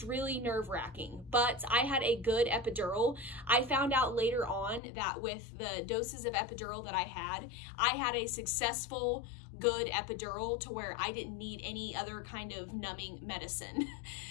really nerve-wracking. But I had a good epidural. I found out later on that with the doses of epidural that I had a successful, good epidural to where I didn't need any other kind of numbing medicine.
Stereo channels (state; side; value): drops out; right; at 4.8 s